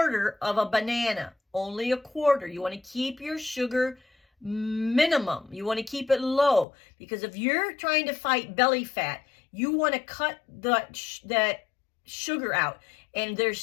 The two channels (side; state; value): right; drops out; at 6.7 s